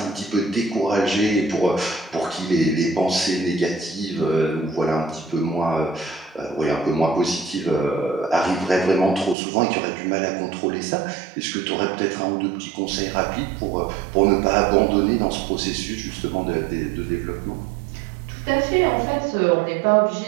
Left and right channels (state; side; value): drops out; left; at 9.3 s